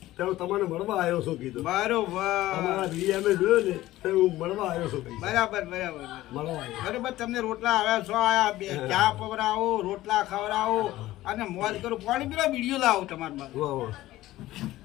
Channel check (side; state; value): right; quieter; 16.0 dB